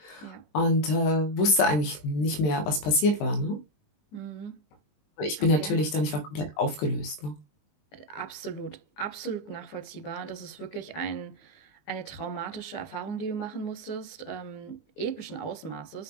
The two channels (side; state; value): right; late; 20 ms